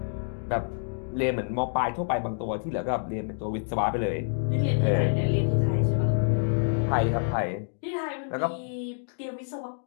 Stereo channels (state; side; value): silent; right; digital silence